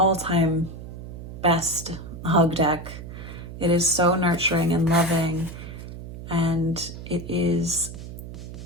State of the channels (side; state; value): right; noise; hum, 11 dB below the sound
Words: best hug deck. It is so nurturing and loving, and it's